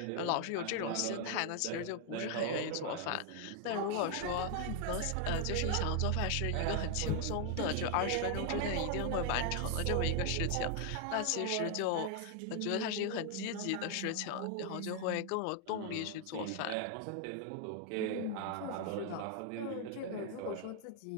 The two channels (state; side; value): different; both; correlation 0.00